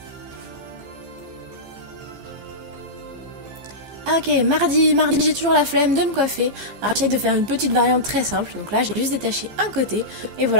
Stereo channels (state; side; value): late; left; 15 ms